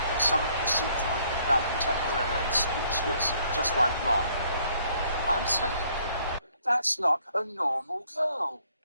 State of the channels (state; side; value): inverted; both; correlation -0.64